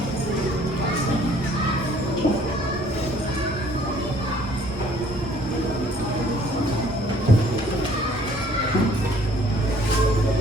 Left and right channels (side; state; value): both; normal; correlation 0.58